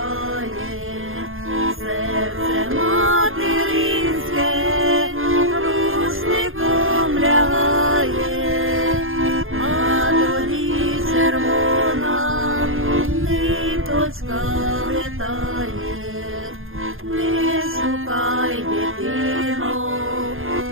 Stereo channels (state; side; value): late; left; 0.60 ms